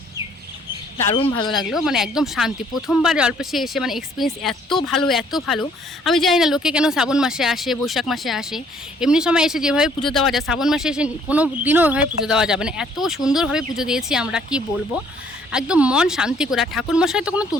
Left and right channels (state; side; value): normal; both; correlation 0.61